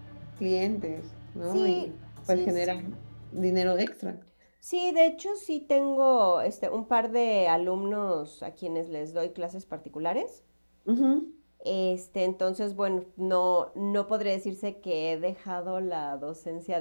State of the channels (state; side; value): inverted; both; correlation -1.00